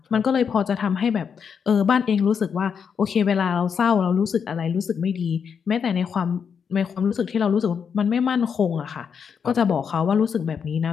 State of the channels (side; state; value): right; quieter; 6.8 dB